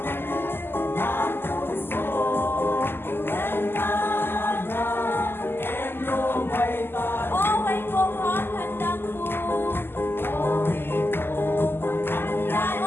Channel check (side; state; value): right; late; 0.11 ms